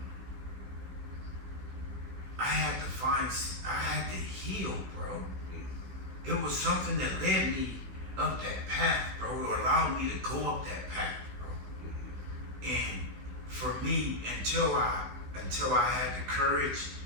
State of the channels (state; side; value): late; left; 16 ms